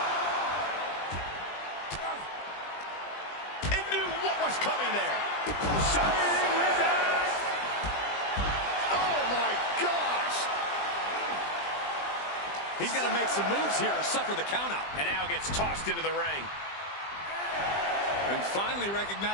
And knew what was coming there. Shining with us. Oh, my gosh. He's got to make some moves here or suffer the countout. And now gets tossed into the ring. And finally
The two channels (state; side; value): late; right; 20 ms